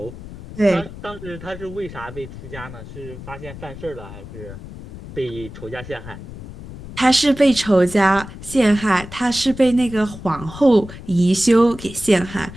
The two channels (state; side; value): noise; left; rumble, 14 dB below the sound